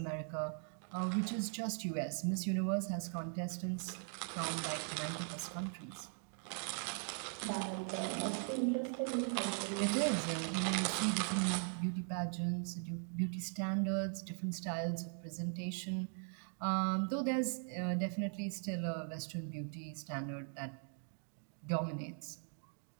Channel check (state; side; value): silent; left; 51 dB below the other